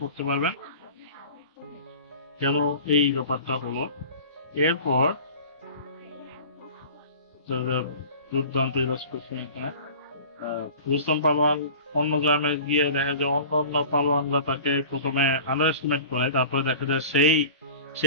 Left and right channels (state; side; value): inverted; both; correlation -0.40